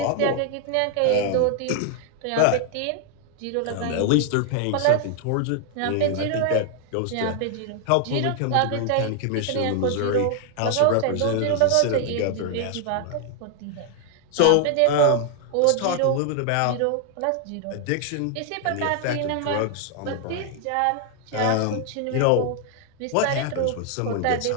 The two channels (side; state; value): both; different; correlation 0.00